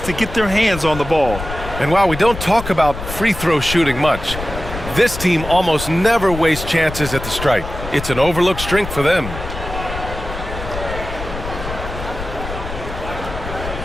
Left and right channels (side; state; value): left; noise; rumble, 9 dB below the sound